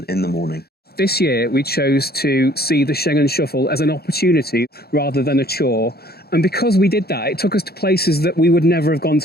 in the morning. This year, we chose to see the Schengen Shuffle as an opportunity rather than a chore. And because we did that, it took us to places that we would never have gone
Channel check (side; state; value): right; late; 0.46 ms